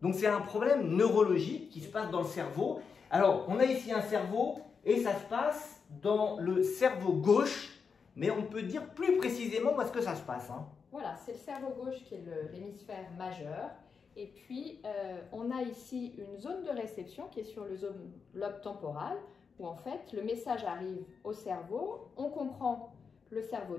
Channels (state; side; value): quieter; right; 5.7 dB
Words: Donc c'est un problème neurologique qui se passe dans le cerveau. Alors, on a ici un cerveau et ça se passe dans le cerveau gauche, mais on peut dire plus précisément où est-ce que ça se passe. Hein. Voilà, c'est le cerveau gauche qui est l'hémisphère majeur. Et puis, on a ici une zone de réception qui est sur le lobe temporal, où en fait, le message arrive au cerveau, on comprend, le cerveau